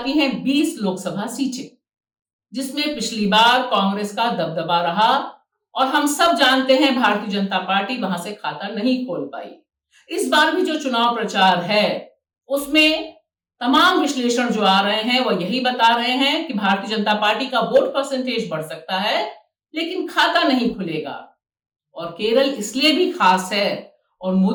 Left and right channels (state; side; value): identical; both; correlation 1.00